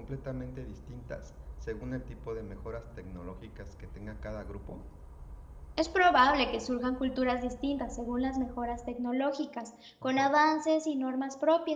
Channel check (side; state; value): both; identical; correlation 1.00